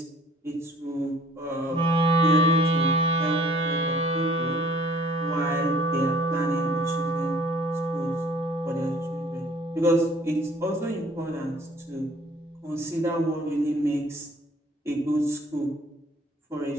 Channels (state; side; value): normal; both; correlation 0.54